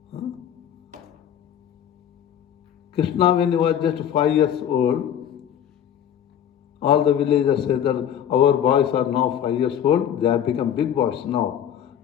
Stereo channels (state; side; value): quieter; right; 9.6 dB